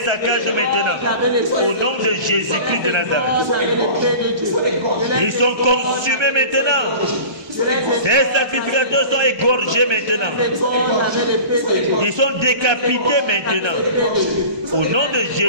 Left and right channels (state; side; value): late; left; 1.2 ms